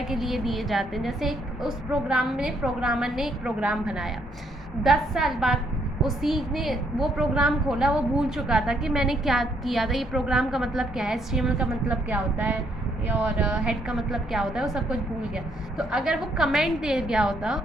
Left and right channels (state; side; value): normal; both; correlation 0.71